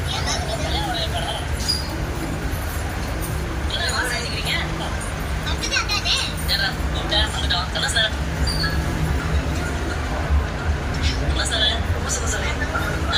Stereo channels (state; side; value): identical; both; correlation 1.00